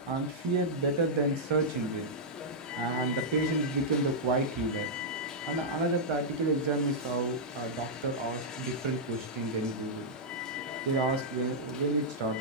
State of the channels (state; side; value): normal; both; correlation -0.08